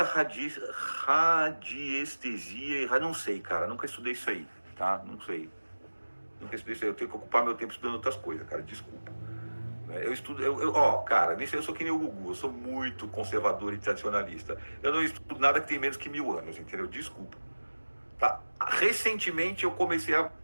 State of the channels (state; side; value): inverted; both; correlation -1.00